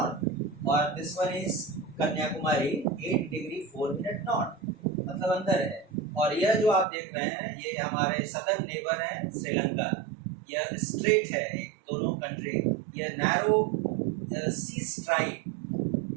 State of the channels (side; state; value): left; drops out; at 6.9 s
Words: और this one is Kanyakumari 8 degree 4 minute north, मतलब अंदर है। और यह जो आप देख रहे हैं ये हमारे सदर्न नेबर है श्रीलंका, यह स्ट्रेट है दोनों कंट्री, यह narrow sea stripe